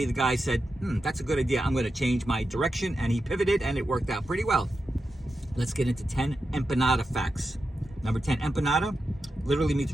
the guy said, that's a good idea. I'm going to change my direction, and he pivoted, and it worked out pretty well. Let's get into 10 empanada facts. Number 10, empanada literally means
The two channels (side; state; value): both; normal; correlation 0.89